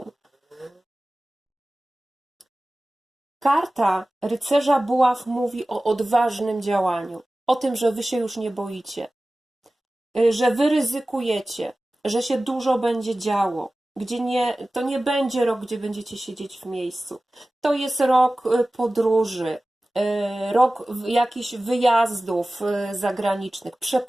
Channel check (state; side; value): normal; both; correlation 0.97